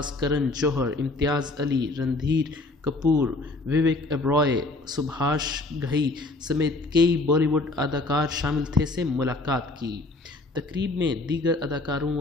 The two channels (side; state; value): right; quieter; 3.0 dB